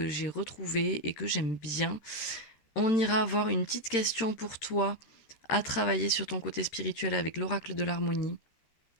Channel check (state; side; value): late; right; 13 ms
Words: j'ai retrouvé et que j'aime bien. On ira avoir une petite question pour toi à travailler sur ton côté spirituel avec l'oracle de l'harmonie.